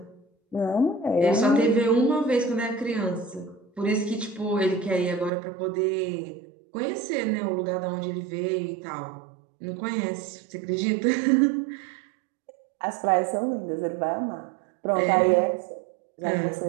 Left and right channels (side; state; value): left; drops out; at 5.3 s